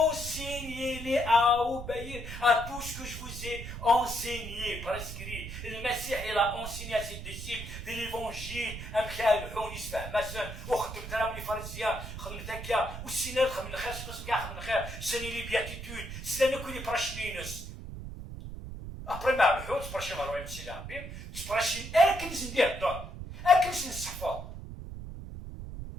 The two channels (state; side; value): noise; right; rumble, 9 dB below the sound